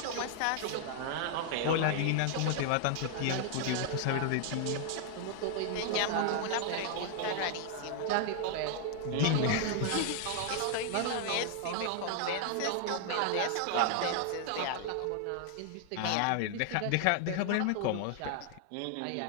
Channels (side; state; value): both; different; correlation 0.00